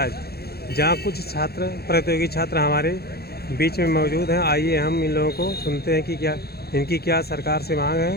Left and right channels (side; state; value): right; late; 0.46 ms